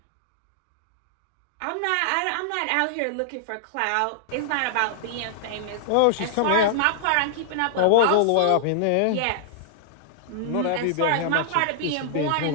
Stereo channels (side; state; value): both; different; correlation -0.01